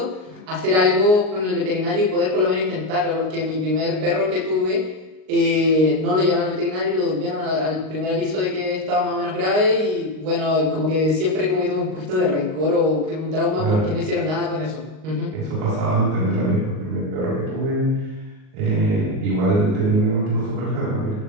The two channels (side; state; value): left; late; 38 ms